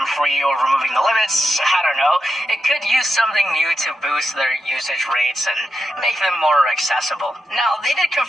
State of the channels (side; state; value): both; normal; correlation 0.86